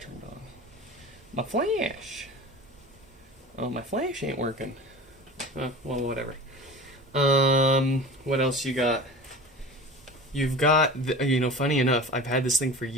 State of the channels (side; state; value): both; normal; correlation 0.35